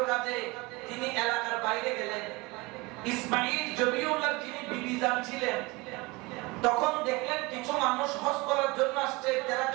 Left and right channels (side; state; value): left; quieter; 23.8 dB